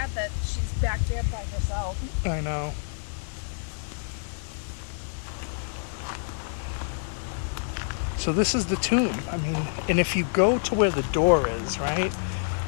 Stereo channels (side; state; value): right; silent; 60 dB below the other